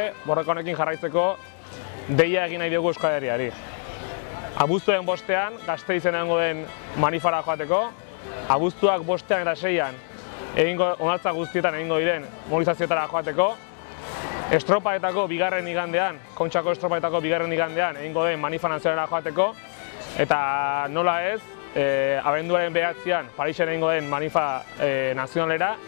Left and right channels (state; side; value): silent; right; 62 dB below the other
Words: borroka honekin jarraitzeko deia egin nahi dugu Euskal Herriari. Abuztuen 5ean Gasteizen egongo den manifara joateko, abuztuak 5ean eta 6ean onartza guztietan egingo diren mobilizazioetara joateko, estropaetako bigarren igandean, Kontxako estropaetako bigarren igandean egingo den manifa nazionalera joateko, eta nola ez, abenduaren 9ean Parisen egingo den manifa nazionalera,